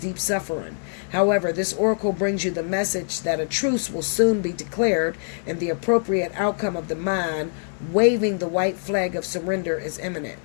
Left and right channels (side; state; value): right; silent; digital silence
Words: suffering. However, this oracle brings you the message that a truce will soon be declared and the appropriate outcome of the mind waving the white flag of surrender is imminent.